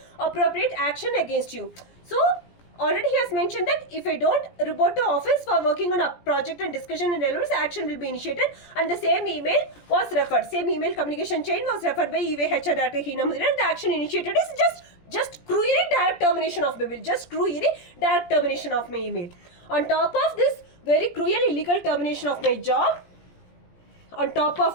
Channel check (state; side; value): late; right; 17 ms